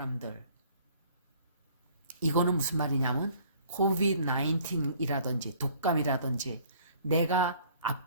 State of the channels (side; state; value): both; inverted; correlation -0.56